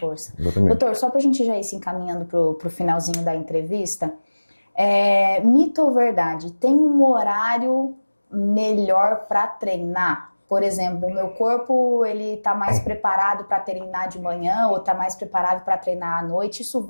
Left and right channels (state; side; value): inverted; both; correlation -1.00